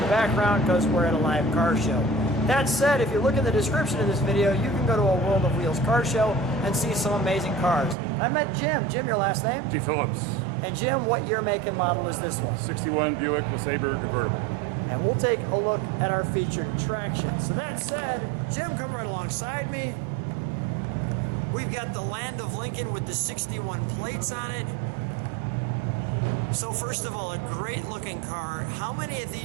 the background because we're at a live car show. That said, if you look at the description of this video, you can go to a World of Wheels car show and see some amazing cars. I met Jim. Jim, your last name? DePhilllips. And Jim, what year, make, and model is this one? 61 Buick LeSabre Convertible. And we'll take a look at our featured attraction. So that said, Jim, come right alongside me. We've got the Land of Lincoln with the 61 plates on it. So first of all, a great looking car. How many of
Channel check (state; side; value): drops out; left; at 8.0 s